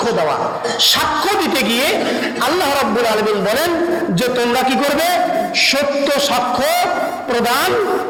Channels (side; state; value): both; identical; correlation 1.00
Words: দেওয়া। সাক্ষ্য দিতে গিয়ে আল্লাহ রাব্বুল আলামিন বলেন যে তোমরা কি করবে? সত্য সাক্ষ্য প্রদান